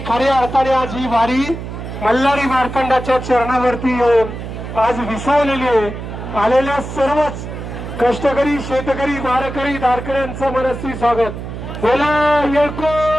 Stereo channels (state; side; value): noise; right; hum, 8 dB below the sound